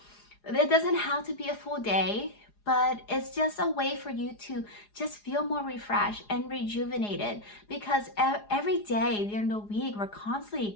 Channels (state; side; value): late; right; 4.8 ms